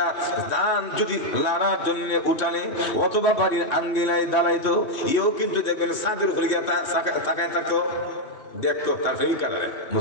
দান যদি লাড়ার জন্য উঠানে অথবা বাড়ির আঙ্গিনায় দাঁড়াইতো, এও কিন্তু দেখবেন ছাদের উপরে গিয়ে তাকায় থাকতো, দেখতো তার প্রেমিকারে।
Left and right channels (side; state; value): right; late; 2.8 ms